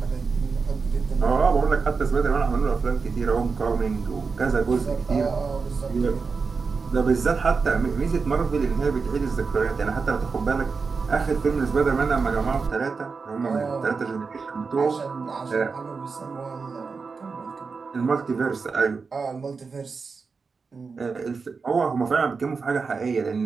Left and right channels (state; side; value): quieter; left; 4.8 dB